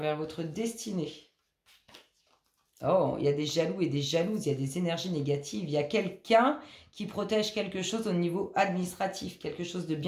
votre destinée. Oh, il y a des jaloux et des jalouses, il y a des énergies négatives. Il y a quelqu'un qui protège quelque chose au niveau administratif, quelque chose de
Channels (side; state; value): both; identical; correlation 1.00